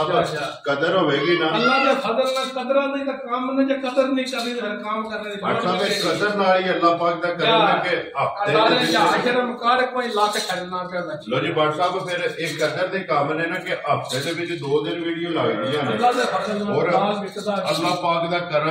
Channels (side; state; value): both; identical; correlation 1.00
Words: कदर होगी ना अल्लाह दे फजल ना कदर नहीं तो काम ने जे कदर नहीं करनी तो फिर काम करने दी व्हाट्सएप कदर नाल ही अल्लाह पाक दा करने के हफ्ते सारे जाहिर मुकाड़ कोई लाख छड़ना पे बच्ची लो जी व्हाट्सएप फिर एक कदर दे काम ने ना कि हफ्ते दे विच 2 दिन वीडियो लगदी है अल्लाह दे फजल और अल्लाह पाक दा